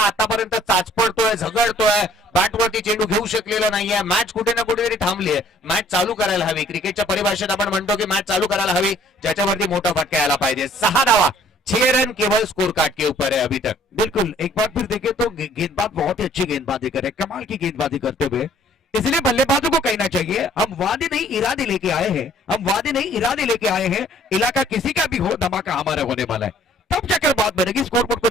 आतापर्यंत चाचपडतोय, झगडतोय, बॅटवरती चेंडू घेऊ शकलेला नाहीये. मॅच कुठे ना कुठेतरी थांबली आहे. मॅच चालू करायला हवी. क्रिकेटच्या परिभाषेत आपण म्हणतो की मॅच चालू करायला हवी, ज्याच्यावरती मोठा फटका यायला पाहिजे. 6 धावा, 6 रन केवल स्कोर कार्ड के ऊपर है अभी तक. बिल्कुल एक बार फिर देखें तो गेंदबाज बहुत ही अच्छी गेंदबाजी करे, कमाल की गेंदबाजी करते हुए. इसलिए बल्लेबाजों को कहना चाहिए हम वादे नहीं इरादे लेके आए हैं, हम वादे नहीं इरादे लेके आए हैं. इलाका किसी का भी हो, धमाका हमारा होने वाला है. तब जाकर बात बनेगी. स्कोरबोर्ड को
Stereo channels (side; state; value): both; normal; correlation 0.58